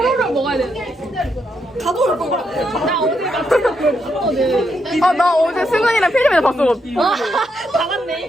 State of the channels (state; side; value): normal; both; correlation 0.80